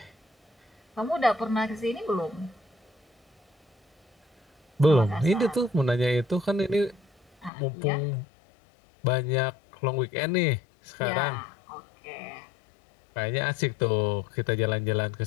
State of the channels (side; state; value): right; drops out; at 7.5 s